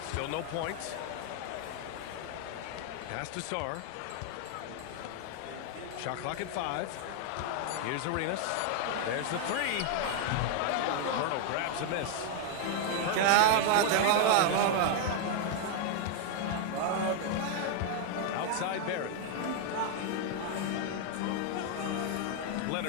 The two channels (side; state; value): both; different; correlation 0.00